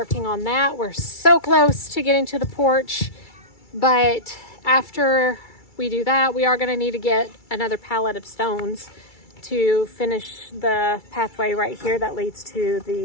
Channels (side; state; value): right; late; 2.3 ms